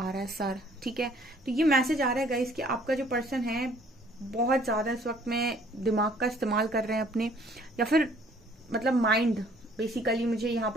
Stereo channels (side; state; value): both; normal; correlation 0.58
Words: रहा है, सर। ठीक है, तो ये मैसेज आ रहा है गाइस कि आपका जो पर्सन है बहुत ज्यादा इस वक्त में दिमाग का इस्तेमाल कर रहे हैं अपने, या फिर मतलब माइंड। बेसिकली मुझे यहाँ